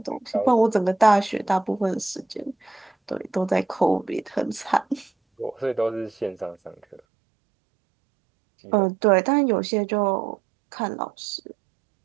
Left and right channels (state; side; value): drops out; left; at 7.0 s